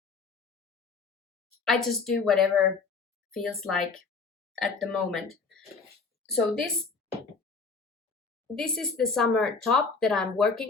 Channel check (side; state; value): right; quieter; 4.6 dB